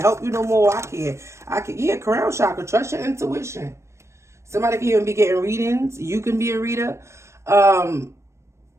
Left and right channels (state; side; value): late; left; 0.13 ms